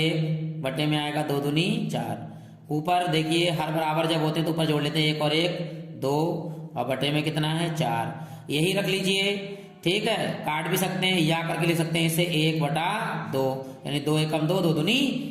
बटे में आएगा 2 दूनी 4। ऊपर देखिए हर बराबर जब होते तो ऊपर जोड़ लेते हैं, 1 और 1 2, और बटे में कितना है 4, यही रख लीजिए। ठीक है, काट भी सकते हैं या करके लिख सकते हैं इसे 1/2, यानी 2 एकम 2, 2 दूनी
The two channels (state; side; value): identical; both; correlation 1.00